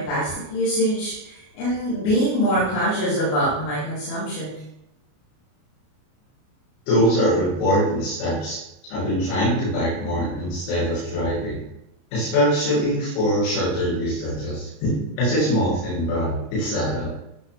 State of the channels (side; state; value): right; late; 33 ms